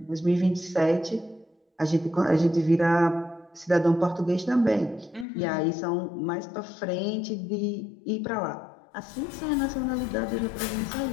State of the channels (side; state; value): right; drops out; at 5.2 s